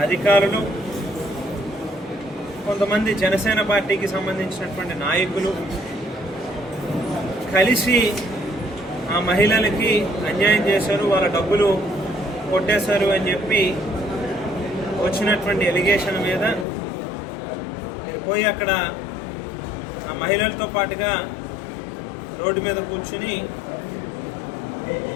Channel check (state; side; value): drops out; right; at 16.7 s